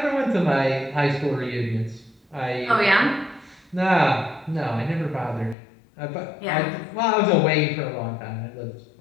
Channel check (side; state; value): right; drops out; at 5.6 s